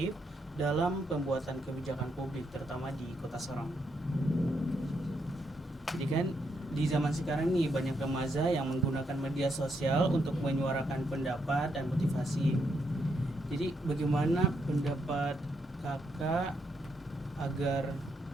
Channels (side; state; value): both; normal; correlation 0.78